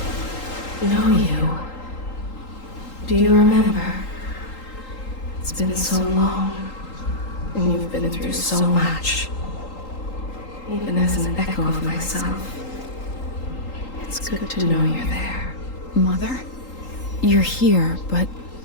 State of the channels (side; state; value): right; late; 3.8 ms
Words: know you. Do you remember? It's been so long, and you've been through so much. Even as an echo of myself, it's good to know you're there. Mother? You're here, but